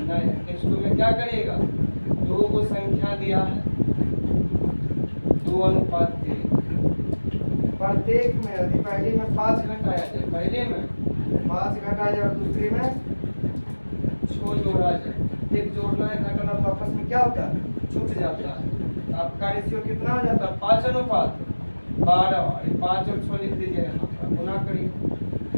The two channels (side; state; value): both; inverted; correlation -1.00